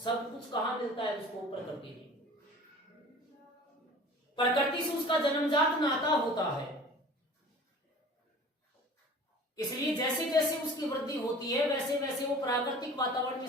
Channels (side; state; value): both; normal; correlation 0.43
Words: कुछ कहां मिलता है उसको? प्रकृति में। प्रकृति से उसका जन्मजात नाता होता है। इसलिए जैसे जैसे उसकी वृद्धि होती है वैसे वैसे वो प्राकृतिक वातावरण में